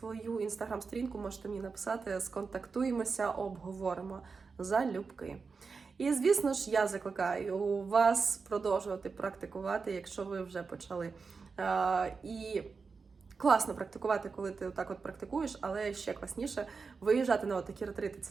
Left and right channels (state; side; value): quieter; left; 4.9 dB